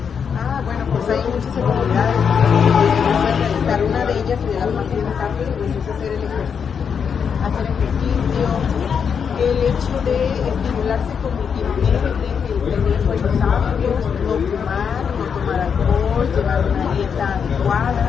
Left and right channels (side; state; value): right; quieter; 6.8 dB